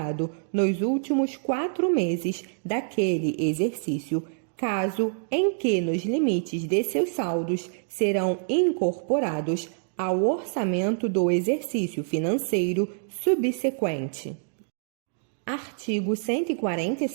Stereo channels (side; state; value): left; silent; 61 dB below the other